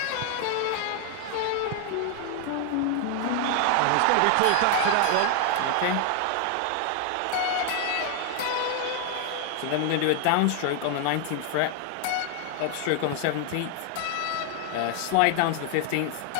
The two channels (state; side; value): different; both; correlation 0.00